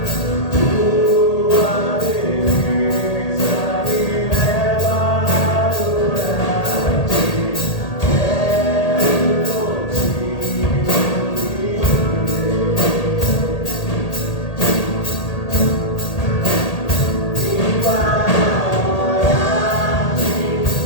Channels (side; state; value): right; late; 1.8 ms